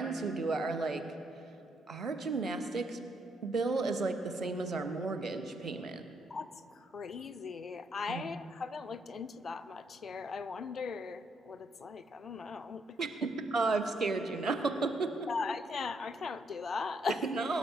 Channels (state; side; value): normal; both; correlation 0.74